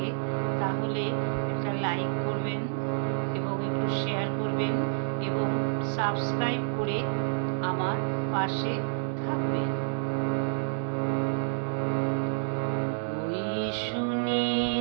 তাহলে একটা লাইক করবেন এবং একটু শেয়ার করবেন এবং সাবস্ক্রাইব করে আমার পাশে থাকবেন। ওই শুনি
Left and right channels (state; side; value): silent; left; digital silence